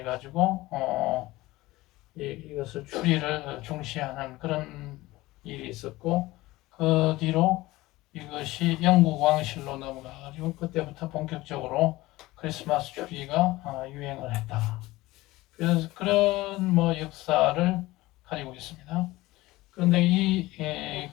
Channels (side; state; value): right; quieter; 18.9 dB